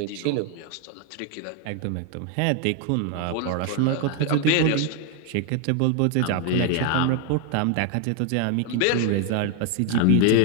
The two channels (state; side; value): different; both; correlation 0.00